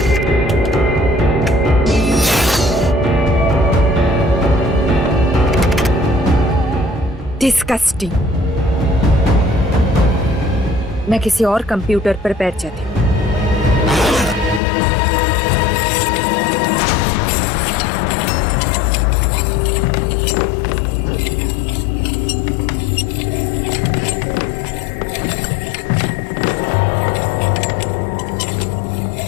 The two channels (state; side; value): drops out; right; at 14.6 s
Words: डिस्गस्टिंग। मैं किसी और कंप्यूटर पर बैठ जाती हूँ।